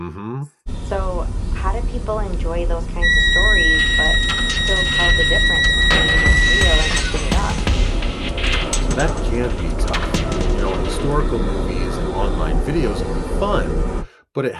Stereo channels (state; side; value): identical; both; correlation 1.00